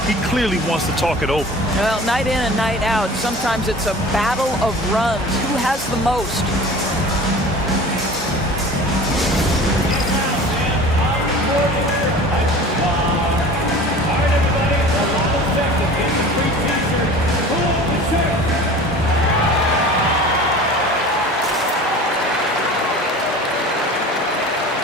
He clearly wants to talk it over. Well, night in and night out, sometimes it's a battle of runs. Who has the most?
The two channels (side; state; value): both; normal; correlation 0.40